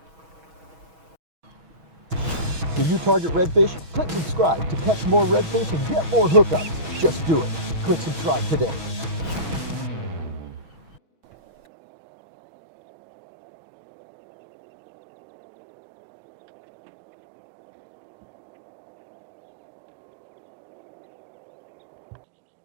Do you target redfish? Click subscribe to catch more redfish and get more hookups. Just do it. Click subscribe today.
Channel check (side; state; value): left; late; 6.2 ms